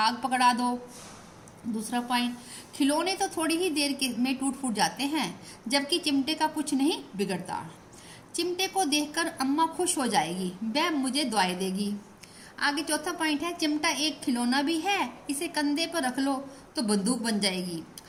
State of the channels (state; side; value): identical; both; correlation 1.00